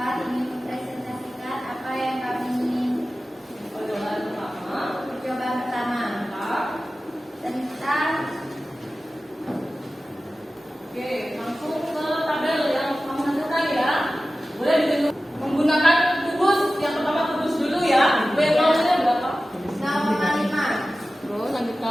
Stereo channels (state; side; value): normal; both; correlation 0.95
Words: ingin mempresentasikan apa yang kami ingin. Percobaan pertama. Percobaan pertama tentang Oke, langsung ke tabel yang kamu hasilkan ya. Boleh ditunjuk menggunakan kubus. Yang pertama kubus dulu ya. W0-nya berapa? 0,5. Terus